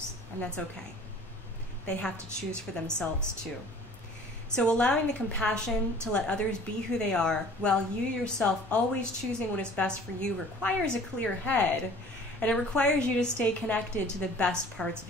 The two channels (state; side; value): normal; both; correlation 0.48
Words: and that's okay. They have to choose for themselves too. So allowing the compassion to let others be who they are, while you yourself always choosing what is best for you, requires a clear head, and it requires you to stay connected to the best parts of